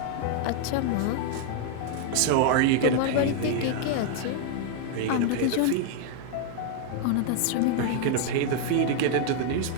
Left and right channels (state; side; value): different; both; correlation 0.00